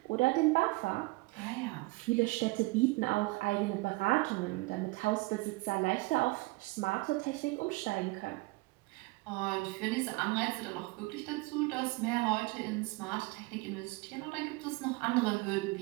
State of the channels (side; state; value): left; quieter; 23.8 dB